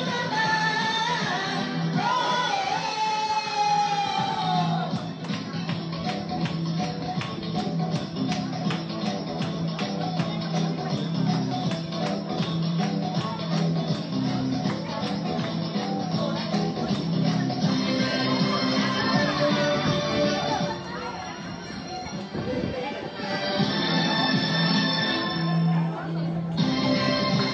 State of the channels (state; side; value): identical; both; correlation 1.00